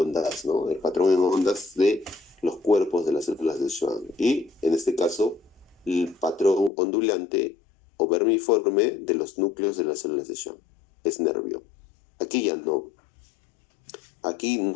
¿no? El patrón en ondas de los cuerpos de las células de Schwann. Y en este caso, el patrón ondulante o vermiforme de los núcleos de las células de Schwann. Es nervio. Aquí ya no. Aquí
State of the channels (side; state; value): right; drops out; at 6.7 s